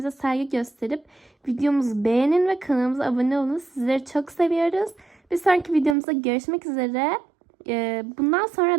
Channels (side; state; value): left; drops out; at 6.0 s